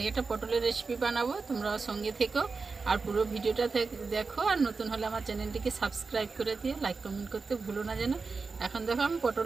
पटलेर रेसिपि बानाबो, तोमरा संगे থেকো और पुरो भिडियोटा देखो और नतून होले आमार चैनेलटिके सबस्क्राइब करे दिओ, लाइक कमेंट करते भुलो ना जेन। एखन देखो आमी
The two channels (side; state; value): left; quieter; 4.4 dB